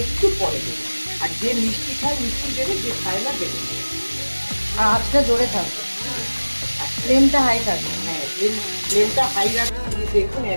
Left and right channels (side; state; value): both; inverted; correlation -1.00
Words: একটু পরে দেবে। আর যে মিষ্টি খায় মিষ্টি দেবে, যে খায় না দেবে। আর আঁচটা জোরে থাকবে, ফ্লেমটা হাই থাকবে। হ্যাঁ, ফ্লেমটা হাই রাখতে। দেখুন